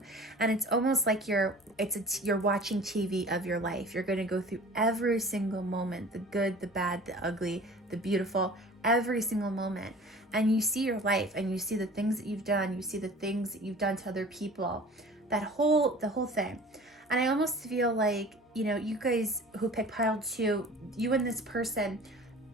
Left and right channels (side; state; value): both; normal; correlation 0.43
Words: And it's almost like you're watching TV of your life. You're going to go through every single moment, the good, the bad, the ugly, the beautiful, every single moment. And you see your life, and you see the things that you've done. You see the things that you've done to other people, the whole thing. And I almost feel like, you guys who pick pile 2, you and this person,